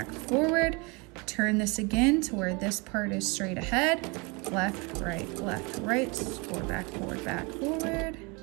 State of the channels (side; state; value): left; quieter; 29.0 dB